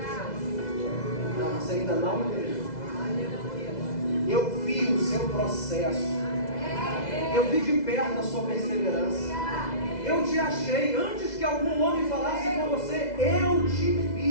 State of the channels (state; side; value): late; right; 2.0 ms